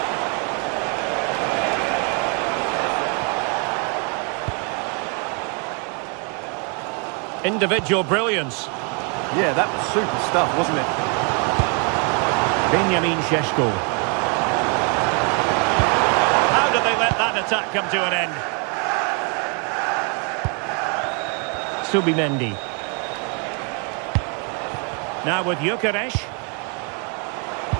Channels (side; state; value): left; quieter; 36.8 dB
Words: Individual brilliance. Yeah, that was super stuff, wasn't it? Benjamin Šeško. How did they let that attack come to an end? Subimendi. Now with Gyökeres.